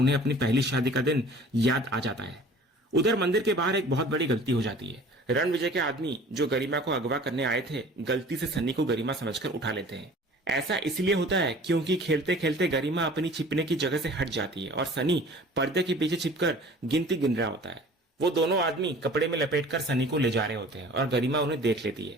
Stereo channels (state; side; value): normal; both; correlation 0.46